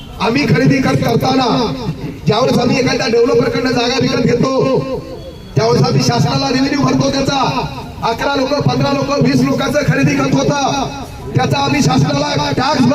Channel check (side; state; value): both; identical; correlation 1.00